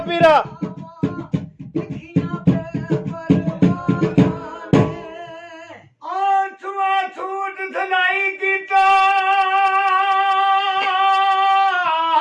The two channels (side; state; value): both; identical; correlation 1.00